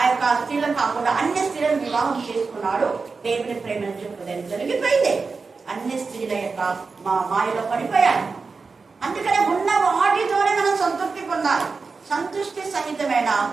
యొక్క స్త్రీలను కాకుండా అన్ని స్త్రీలను వివాహం చేసుకున్నాడు. దేవుని ప్రేమ నుంచి హృదయం జరిగిపోయింది. అన్ని స్త్రీల యొక్క మాయలో పడిపోయాడు. అందుకనే ఉన్న వాటితోనే మనం సంతృప్తి పొందాలి. సంతృష్టి సహితమైన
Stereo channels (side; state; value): left; quieter; 4.5 dB